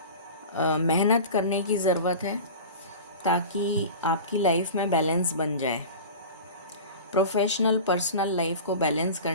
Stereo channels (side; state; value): both; inverted; correlation -0.33